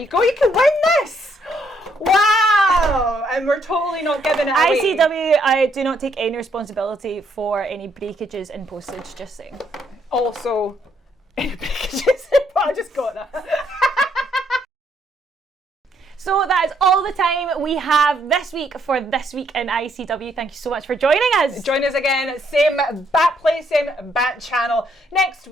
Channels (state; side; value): normal; both; correlation 0.71